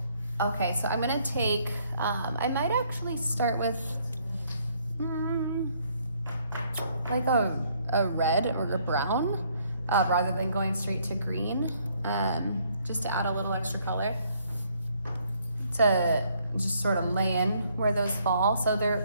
Okay, so I'm gonna take, I might actually start with like a red or a brown rather than going straight to green, just to add a little extra color to just sort of lay in where those fall. So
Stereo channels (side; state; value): both; inverted; correlation -0.67